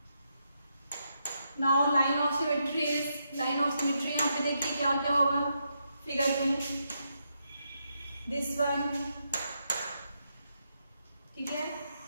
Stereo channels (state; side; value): inverted; both; correlation -0.81